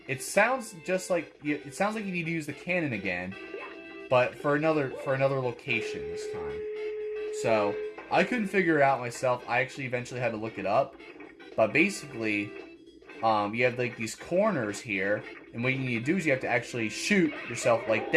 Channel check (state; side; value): identical; both; correlation 1.00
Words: It sounds just like you need to use the cannon again, but for another location this time. So I couldn't figure it out myself. I actually eventually had to look it up. But basically, you have like these corners here, and what you need to do is you have to actually shoot yourself like